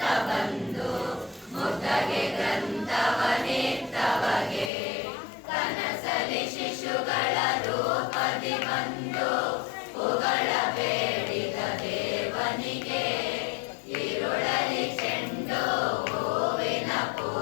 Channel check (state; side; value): drops out; right; at 4.7 s